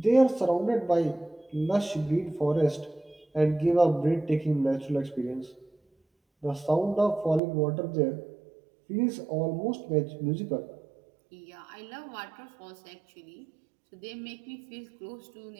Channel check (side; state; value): left; drops out; at 7.4 s